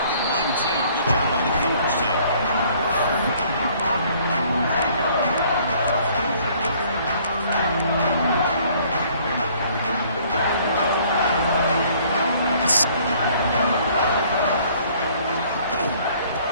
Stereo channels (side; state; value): both; inverted; correlation -0.59